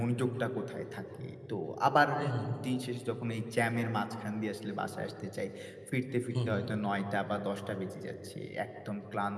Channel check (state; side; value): identical; both; correlation 1.00